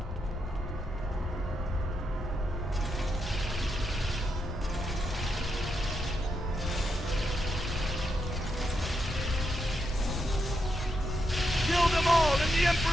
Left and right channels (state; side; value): normal; both; correlation 0.82